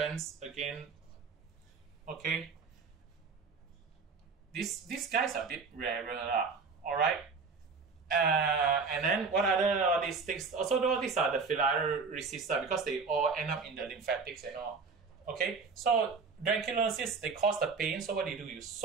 again. Okay. These guys are a bit rarer, alright. And then what other all these things? Also, all these are the filariaceae because they all end up in the lymphatics and all. Okay, so dranculosis, they cause the pain. So what do? You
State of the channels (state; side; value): quieter; left; 4.8 dB